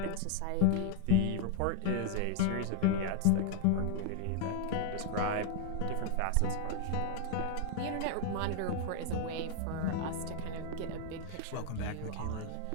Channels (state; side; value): different; both; correlation 0.00